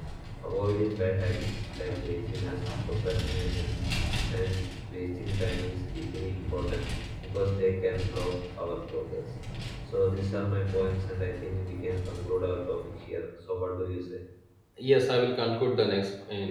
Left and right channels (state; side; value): identical; both; correlation 1.00